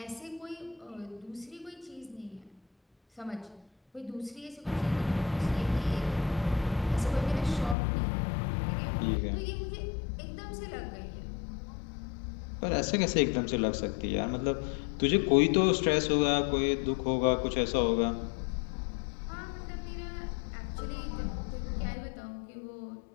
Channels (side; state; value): right; drops out; at 7.8 s